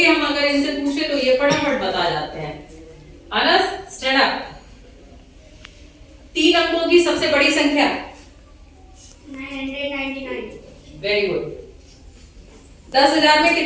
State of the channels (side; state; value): both; identical; correlation 1.00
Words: हम अगर इनसे पूछे तो ये फटाफट बता जाते हैं। Anas stand up. 3 अंकों की सबसे बड़ी संख्या? 999। Very good. 10,000 में